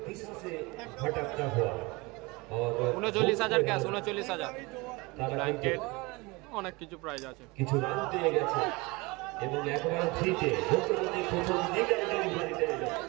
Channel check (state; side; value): quieter; left; 24.6 dB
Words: दिशा से भटकता हुआ और 39,000 ক্যাশ 39,000 ব্ল্যাঙ্কেট অনেক কিছু প্রাইজ আছে কিছু রান দিয়ে গেছে এবং একবার ফ্রিতে ভোটপতি প্রথম দিকের ডেলিভারিতে এলো